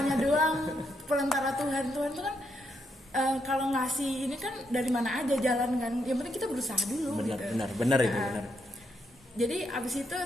doang, perantara Tuhan tuh kan. Kalau ngasih ini kan dari mana aja jalan kan, yang penting kita berusaha dulu. Benar itu benar. Jadi abis itu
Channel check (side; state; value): both; normal; correlation 0.79